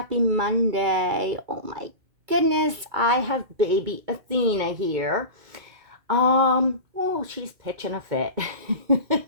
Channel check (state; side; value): late; left; 2.3 ms